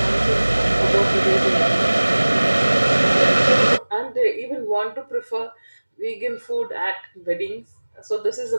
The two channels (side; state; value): both; inverted; correlation -1.00